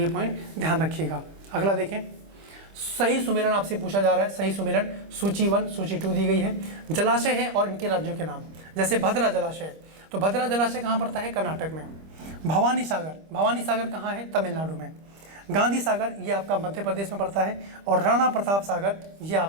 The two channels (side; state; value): left; late; 25 ms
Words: ये पॉइंट ध्यान रखिएगा। अगला देखें, सही सुमेलन आपसे पूछा जा रहा है, सही सुमेलन सूची 1 सूची 2 दी गई है। जलाशय है और इनके राज्यों के नाम, जैसे भद्रा जलाशय, तो भद्रा जलाशय कहाँ पड़ता है? कर्नाटक में। भवानी सागर कहाँ है? तमिलनाडु में। गांधी सागर ये आपका मध्य प्रदेश में पड़ता है, और राणा प्रताप सागर ये